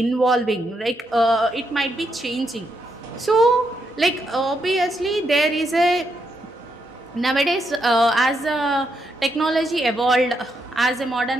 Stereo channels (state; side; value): normal; both; correlation 0.80